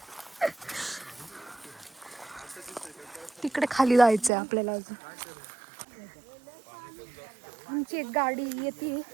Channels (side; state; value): left; drops out; at 4.3 s